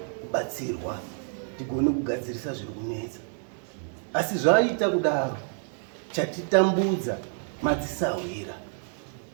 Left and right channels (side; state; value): left; silent; 56 dB below the other